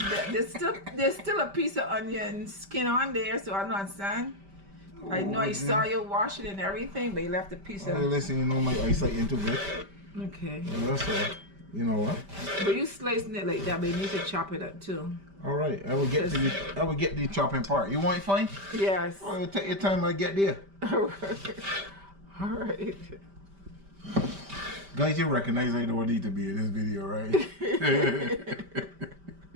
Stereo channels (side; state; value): left; late; 5.1 ms